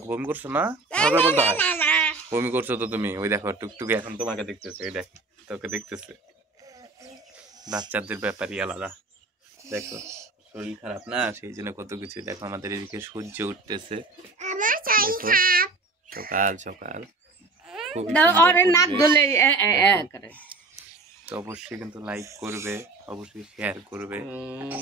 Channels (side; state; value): left; quieter; 3.6 dB